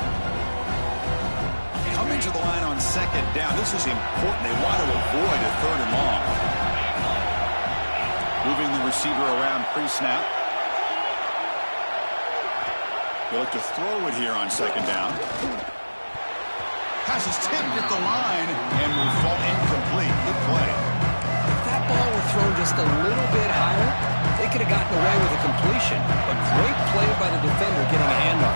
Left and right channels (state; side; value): inverted; both; correlation -1.00